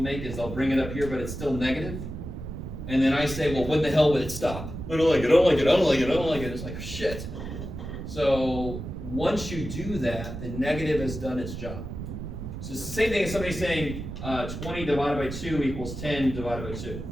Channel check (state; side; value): noise; right; rumble, 8 dB below the sound